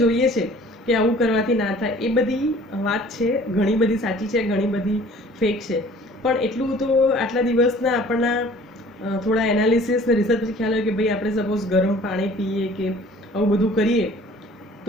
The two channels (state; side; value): normal; both; correlation 0.50